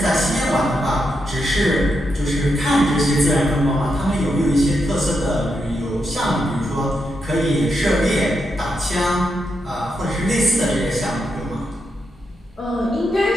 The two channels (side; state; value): both; normal; correlation 0.83